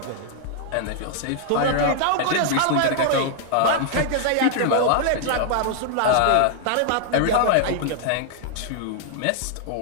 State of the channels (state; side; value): different; both; correlation -0.01